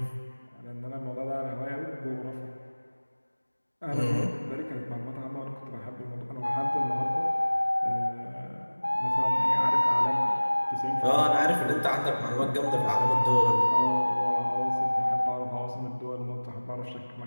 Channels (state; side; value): inverted; both; correlation -1.00